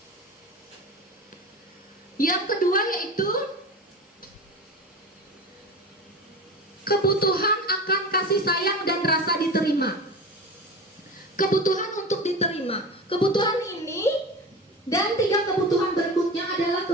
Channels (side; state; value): both; normal; correlation 0.30